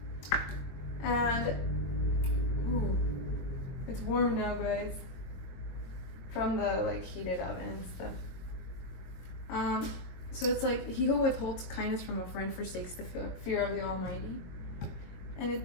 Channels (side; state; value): right; late; 22 ms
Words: And, ooh, it's warm now, guys. From the, like, heated oven and stuff. So it's like, he who withholds kindness from a friend forsakes the fear of the Almighty.